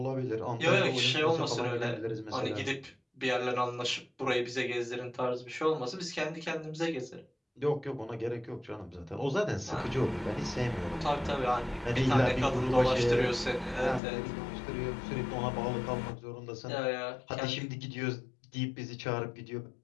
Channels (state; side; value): drops out; right; at 14.0 s